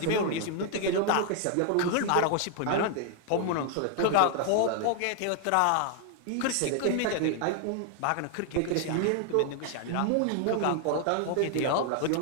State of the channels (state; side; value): different; both; correlation 0.00